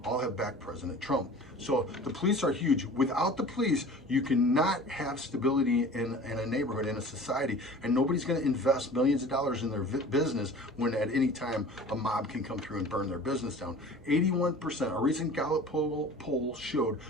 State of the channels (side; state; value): both; normal; correlation 0.42